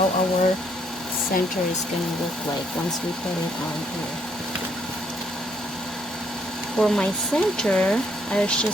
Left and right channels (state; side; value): normal; both; correlation 0.70